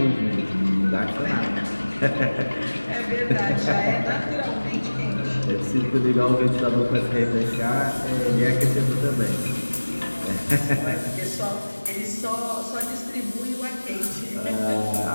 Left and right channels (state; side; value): inverted; both; correlation -1.00